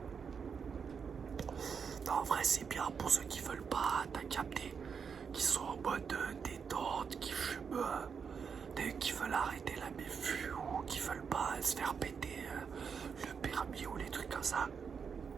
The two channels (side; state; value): left; quieter; 6.3 dB